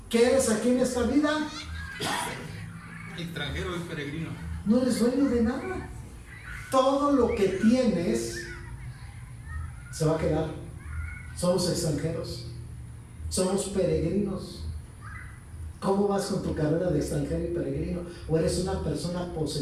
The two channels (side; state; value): both; identical; correlation 1.00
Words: ¿Qué eres aquí en esta vida? Extranjero y peregrino. No eres dueño de nada. Todo lo que tienes se va a quedar. Somos extranjeros. Somos peregrinos. ¿Cómo vas con tu carrera de extranjero y peregrino? ¿O eres una persona